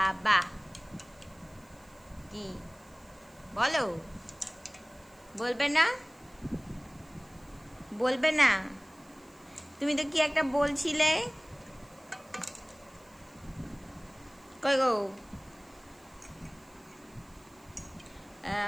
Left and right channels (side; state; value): right; noise; hiss, 29 dB below the sound